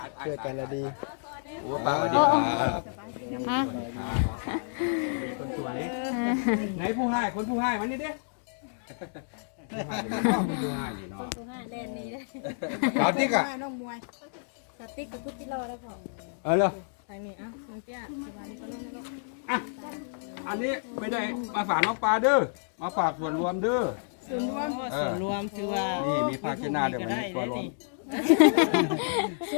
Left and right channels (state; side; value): silent; right; digital silence